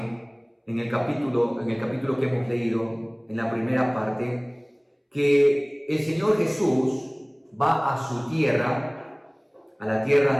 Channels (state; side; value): identical; both; correlation 1.00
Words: en el capítulo que hemos leído, en la primera parte, que el Señor Jesús va a su tierra, a la tierra